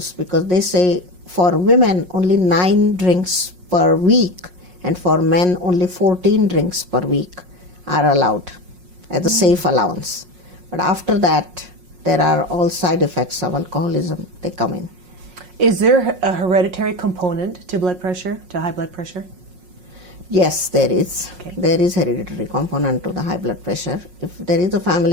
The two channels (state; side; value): late; left; 5.5 ms